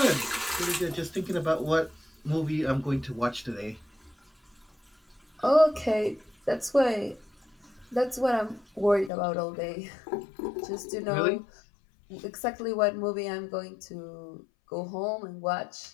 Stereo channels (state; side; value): drops out; right; at 9.1 s